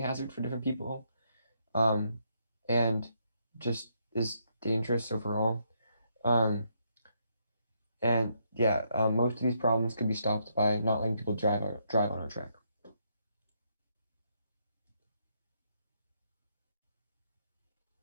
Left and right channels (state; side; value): inverted; both; correlation -0.76